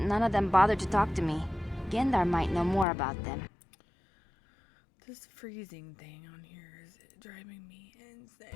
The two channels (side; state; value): right; drops out; at 2.9 s